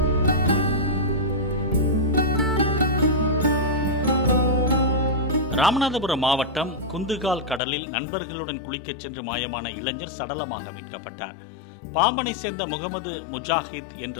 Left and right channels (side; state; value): right; drops out; at 7.6 s